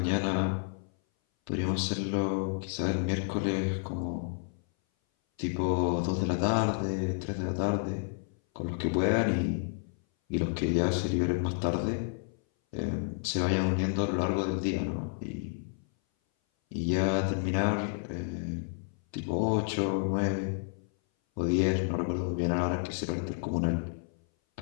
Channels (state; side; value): silent; right; 57 dB below the other